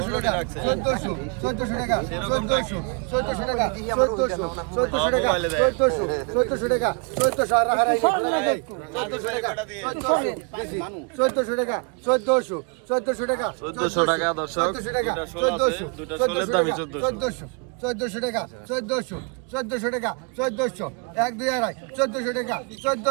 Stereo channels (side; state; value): left; quieter; 35.3 dB